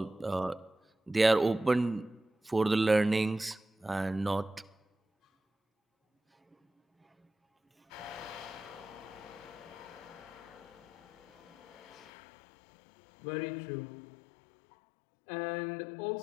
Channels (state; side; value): drops out; right; at 12.1 s